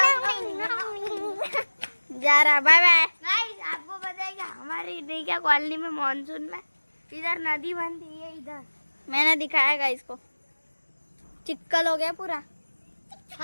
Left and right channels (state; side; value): inverted; both; correlation -1.00